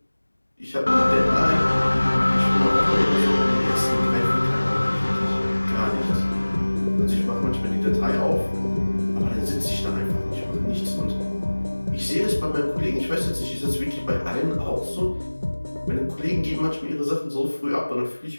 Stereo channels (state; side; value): inverted; both; correlation -1.00